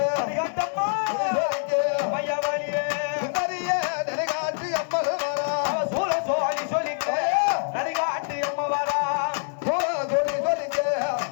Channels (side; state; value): right; silent; digital silence